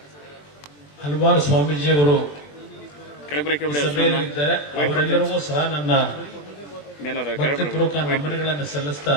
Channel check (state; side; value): late; right; 20 ms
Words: ಹಲವಾರು ಸ್ವಾಮೀಜಿಯವರು ಸಭೆಯಲ್ಲಿದ್ದಾರೆ. ಅವರೆಲ್ಲರಿಗೂ ಸಹ ನನ್ನ ಭಕ್ತಿಪೂರ್ವಕ ನಮನಗಳನ್ನು ಸಲ್ಲಿಸ್ತಾ,